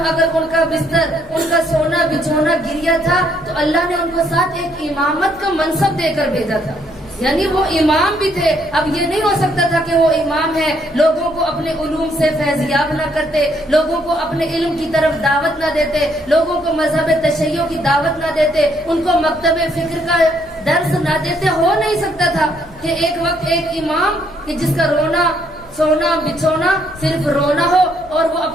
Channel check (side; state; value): left; noise; hum, 24 dB below the sound